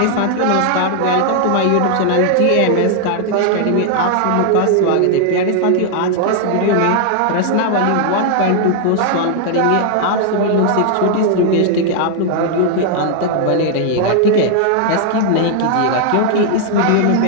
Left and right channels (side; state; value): both; different; correlation 0.00